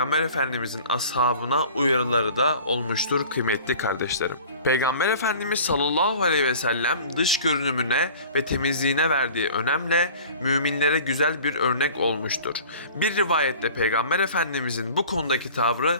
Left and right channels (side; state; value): both; inverted; correlation -0.44